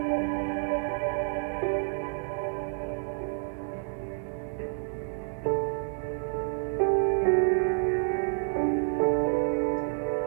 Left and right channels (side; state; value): left; silent; 58 dB below the other